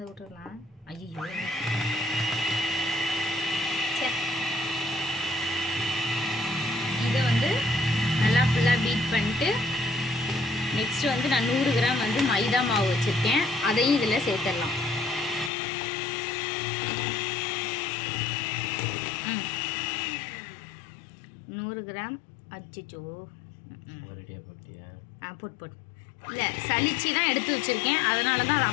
விட்டுடலாம். ஐயோ, இதை வந்து நல்லா ஃபுல்லாக பீட் பண்ணிட்டு நெக்ஸ்ட் வந்து நான் 100 கிராம் வந்து மைதா மாவு வச்சுருக்கேன், அதையும் இதில் சேர்த்துடலாம். கிராம் அச்சிச்சோ போட்டியா? போட்டு இல்லை, சளிச்சு தான் எடுத்து வச்சுருக்கேன், அதனால தான் அதை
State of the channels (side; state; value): right; drops out; at 15.5 s